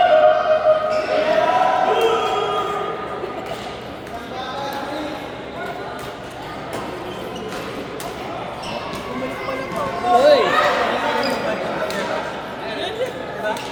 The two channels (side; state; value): both; identical; correlation 1.00